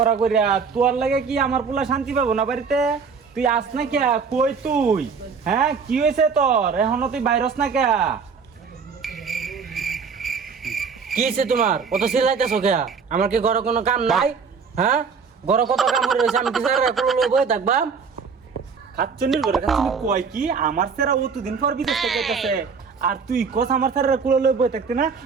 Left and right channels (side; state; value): left; quieter; 5.7 dB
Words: করিয়া, তোর লাগে কি আমার পোলা শান্তি পাবো না বাড়িতে? তুই আস না কে? কই তুই? হ্যাঁ কি হয়েছে তোর? এখনো তুই বাইরস না কে? কি হয়েছে তোমার? কত চিল্লাইতেছো কে? আমার কি ঘরে কোনো কাম নাই? হ্যাঁ, ঘরে কত কাম করে রয়েছে, আমি কি স্যার বই থাকবা? খাচ্চন্নির ঘরে খাচ্চন্নি কয় কি আমার সেরা অতদিন পর বিদেশ থেকে আইতাছে, আর তুই কস আমার স্যারের কুলো লই বই থাকতে না?